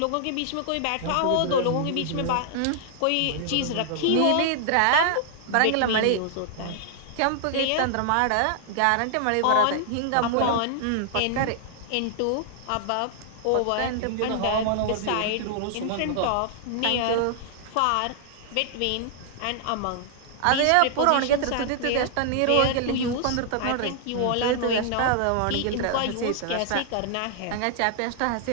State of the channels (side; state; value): both; different; correlation -0.01